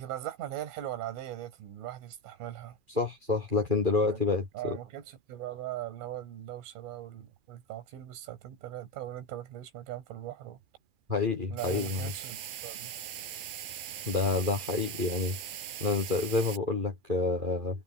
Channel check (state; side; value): late; left; 2.4 ms